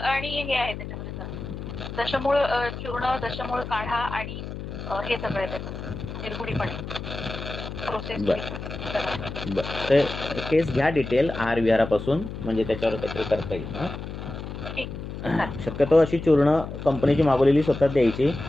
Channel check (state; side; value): noise; left; hum, 8 dB below the sound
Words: हे आहे त्याच्यामध्ये सर, दशमूळ चूर्ण, दशमूळ काढा आणि हे सगळं त्याचं निर्गुडीपणे प्रोसेस. ते केस घ्या डिटेल आहार विहारापासून, म्हणजे त्याच्यावर काहीतरी करता येईल. शक्यतो अशी चूर्ण कंपनीची मागवलेली स्वतः द्यायची.